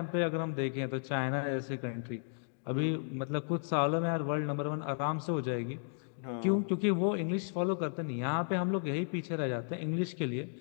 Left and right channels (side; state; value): right; silent; digital silence